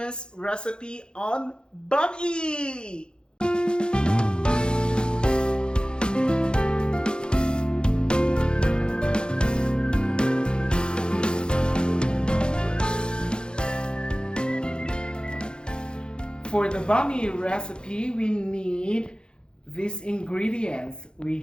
recipe on bami. For the bami recipe, we need these ingredients. We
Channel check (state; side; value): late; right; 0.049 ms